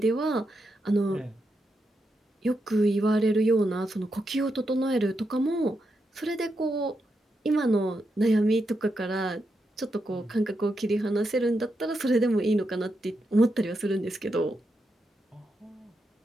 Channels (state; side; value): normal; both; correlation 0.84